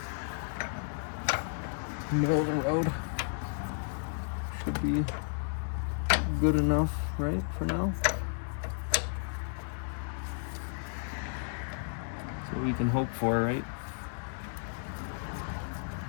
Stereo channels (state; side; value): silent; right; digital silence